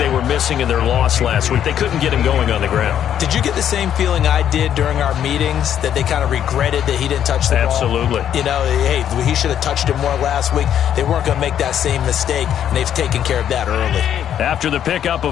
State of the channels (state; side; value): quieter; right; 9.8 dB